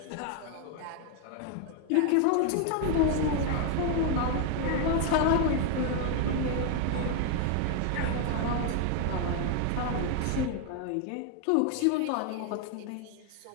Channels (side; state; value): both; different; correlation 0.01